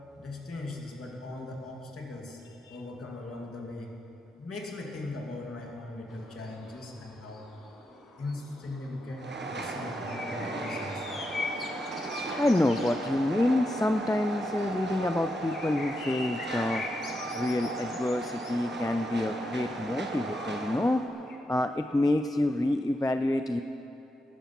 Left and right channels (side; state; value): both; normal; correlation 0.84